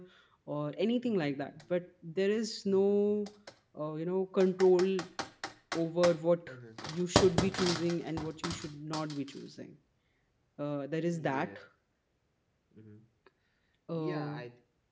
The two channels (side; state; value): both; identical; correlation 1.00